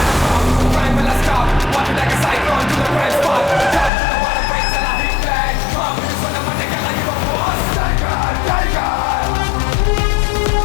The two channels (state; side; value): drops out; right; at 3.9 s